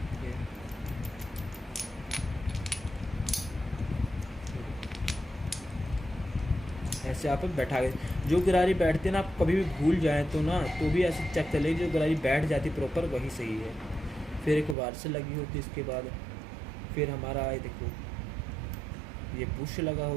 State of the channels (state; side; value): drops out; left; at 14.8 s